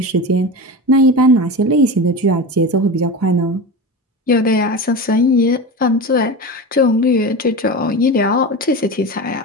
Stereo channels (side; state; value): both; normal; correlation 0.26